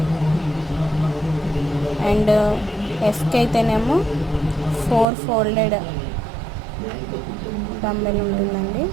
అండ్ ఎఫ్కి అయితేనేమో 4 ఫోల్డెడ్ డంబెల్ ఉంటుందండి.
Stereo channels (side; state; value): left; drops out; at 5.1 s